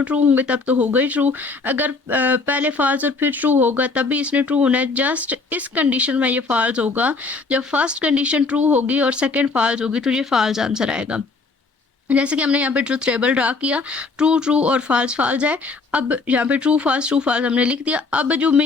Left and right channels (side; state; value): right; quieter; 4.0 dB